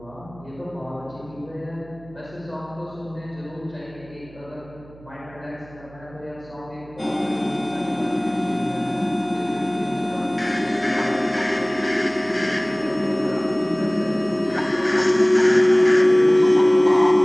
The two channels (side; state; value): right; noise; hum, 22 dB below the sound